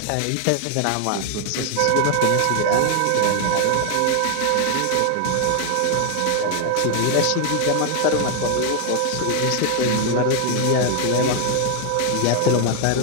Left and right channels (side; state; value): both; different; correlation 0.00